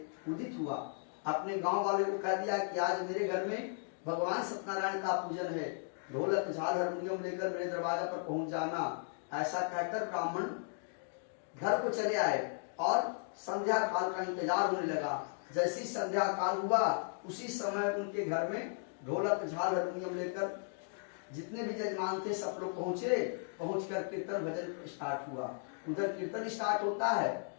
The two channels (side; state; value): right; silent; digital silence